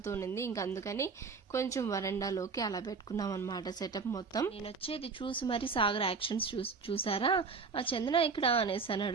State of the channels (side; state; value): left; quieter; 4.9 dB